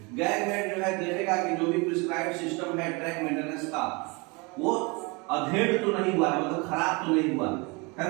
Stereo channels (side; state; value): left; quieter; 28.5 dB